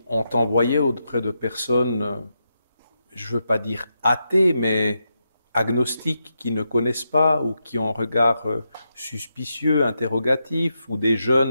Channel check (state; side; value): inverted; both; correlation -0.85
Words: on t'envoyait auprès de personnes, je veux pas dire athées, mais agnostiques, qui ne connaissent pas ou qui ont un regard suspicieux, interrogatif, ou des